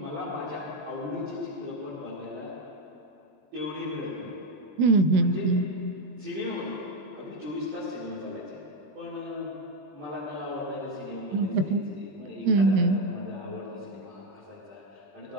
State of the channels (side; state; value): left; late; 21 ms